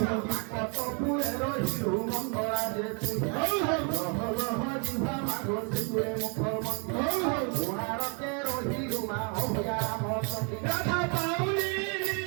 কতপুরে রহিলু মঙ্গলা যে জিভা মাঘ সিধুয়ে মুখ মন্দিরকে রহিলু মা অভিরাম রাধা পাউলি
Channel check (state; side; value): quieter; left; 36.8 dB